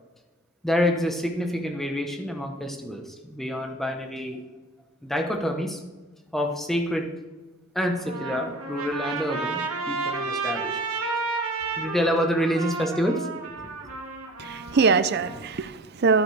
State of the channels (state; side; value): normal; both; correlation 0.41